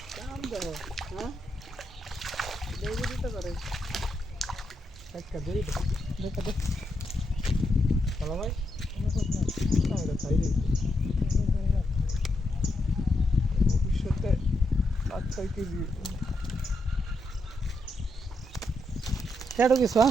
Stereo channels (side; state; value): both; normal; correlation 0.82